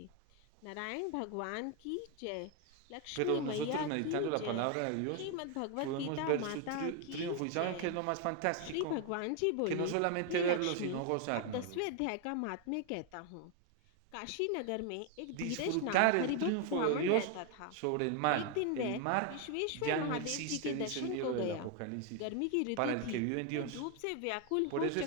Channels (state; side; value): different; both; correlation 0.01